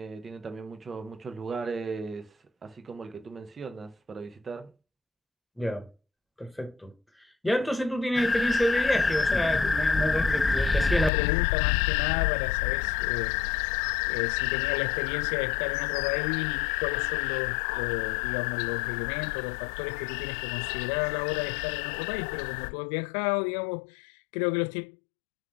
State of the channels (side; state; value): right; drops out; at 11.1 s